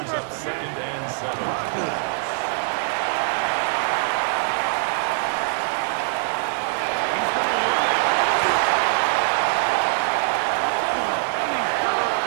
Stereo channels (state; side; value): silent; left; 63 dB below the other